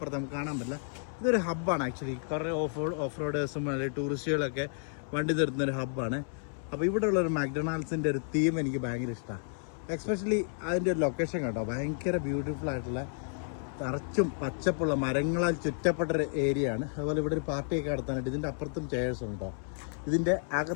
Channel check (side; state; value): right; silent; 57 dB below the other